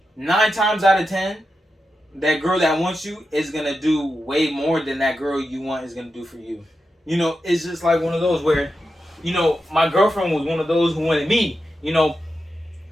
9 times out of 10, that girl that wants you is gonna do way more than that girl you want is gonna do for you. You know, it's just like one of those where, you know, my girlfriend was one of those who wanted me. You know,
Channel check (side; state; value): both; normal; correlation 0.89